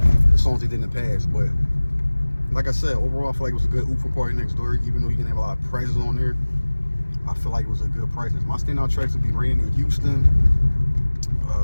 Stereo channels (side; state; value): both; inverted; correlation -1.00